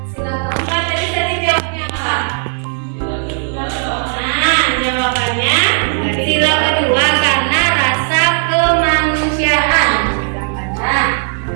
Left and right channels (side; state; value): left; silent; 59 dB below the other